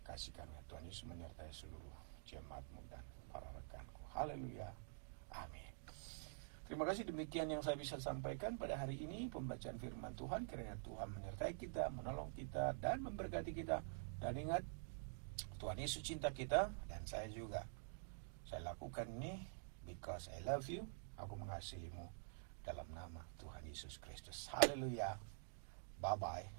Kasih kami Tuhan Yesus menyertai seluruh jemaat-Mu dan para rekanku. Haleluya, amin. Terima kasih, demikian yang saya bisa sampaikan pada hari ini, pembacaan firman Tuhan. Kiranya Tuhan menyertai kita, menolong kita, dan memberkati kita. Dan ingat, Tuhan Yesus cinta kita, dan saya juga. Saya lakukan ini because I love you. Aku mengasihimu dalam nama Tuhan Yesus Kristus. Haleluya.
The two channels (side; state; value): left; silent; digital silence